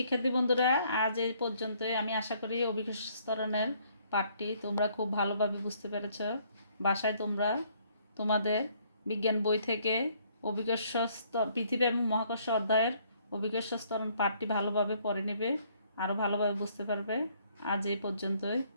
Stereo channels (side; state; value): both; inverted; correlation -0.65